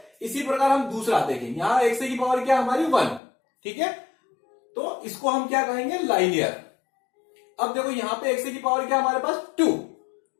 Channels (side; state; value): right; drops out; at 3.2 s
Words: इसी प्रकार हम दूसरा देखेंगे। यहां x की पावर क्या हमारी 1। ठीक है, तो इसको हम क्या कहेंगे लाइनियर। अब देखो यहां पे x की पावर क्या हमारे पास 2,